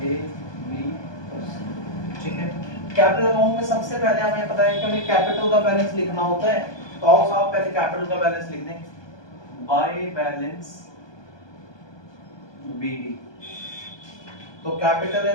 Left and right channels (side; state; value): right; late; 1.2 ms